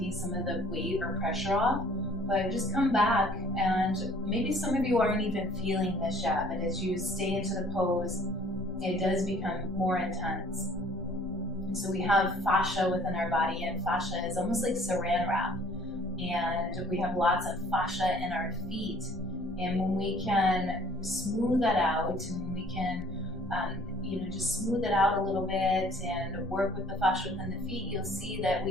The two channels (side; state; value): both; normal; correlation 0.55